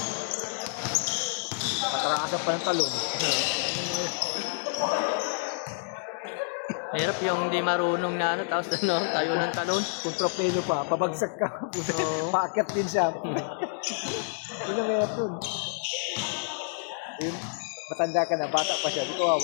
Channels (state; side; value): silent; right; digital silence